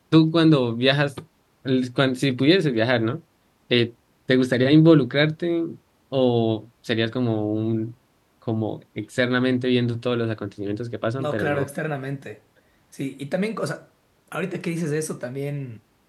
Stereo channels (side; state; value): both; identical; correlation 1.00